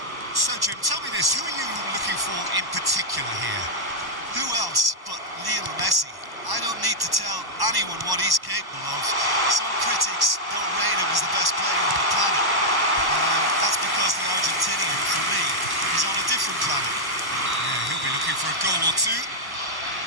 So, Jim, tell me this, who are you looking for in particular here? Who else but Lionel Messi? I don't need to tell anyone what he's capable of. Some critics don't rate him as the best player on the planet. That's because the Argentinian, for me, is on a different planet. Yeah, he'll be looking for a goal or two.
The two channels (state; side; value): late; left; 1.1 ms